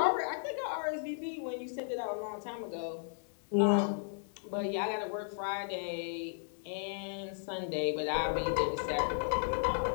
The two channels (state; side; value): silent; right; digital silence